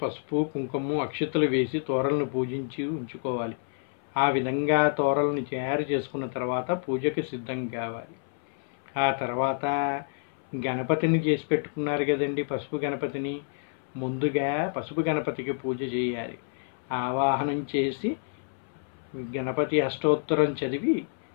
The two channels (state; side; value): silent; right; 59 dB below the other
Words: కుంకుమ, అక్షతలు వేసి తోరణను పూజించి ఉంచుకోవాలి. ఆ విధంగా తోరణను తయారు చేసుకున్న తర్వాత పూజకి సిద్ధం కావాలి. ఆ తర్వాత గణపతిని చేసి పెట్టుకున్నారు కదండి, పసుపు గణపతిని. ముందుగా పసుపు గణపతికి పూజ చేయాలి. ఆవాహనం చేసి గణపతి అష్టోత్తరం చదివి